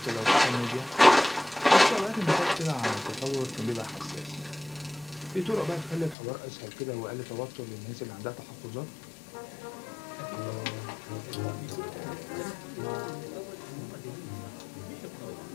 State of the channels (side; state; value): right; drops out; at 6.2 s